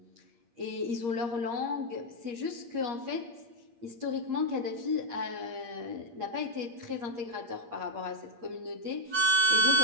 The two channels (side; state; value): left; late; 8.5 ms